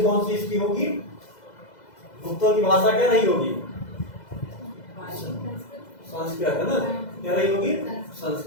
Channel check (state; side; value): late; right; 2.0 ms